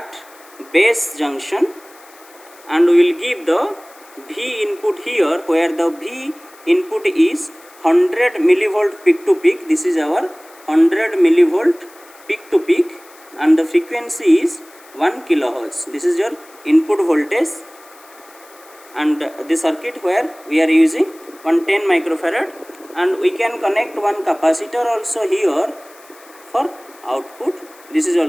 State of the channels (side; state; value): left; noise; hiss, 25 dB below the sound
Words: base junction, and we will give the V input here, where the V input is 100 millivolt peak to peak. This is our 100 millivolt peak to peak, and the frequency is 1 kilohertz. This is your input voltage, and the circuit where we are using 110 microfarad, and we can connect one capacitor also here for output. This is